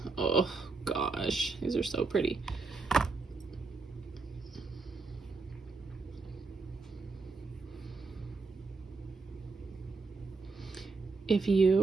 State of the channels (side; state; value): left; quieter; 4.1 dB